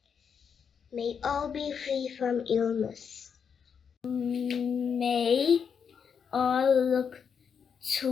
May all be free from illness. May all look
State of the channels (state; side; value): quieter; right; 6.8 dB